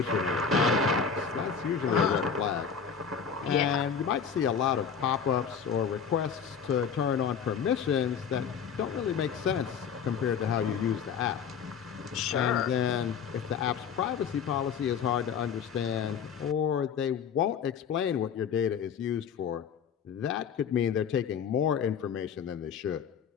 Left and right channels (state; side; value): quieter; right; 6.8 dB